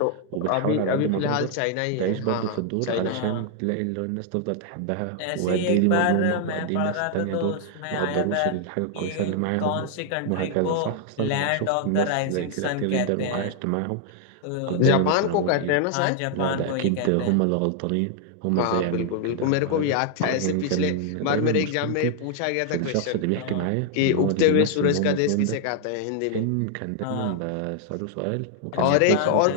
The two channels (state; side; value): different; both; correlation 0.00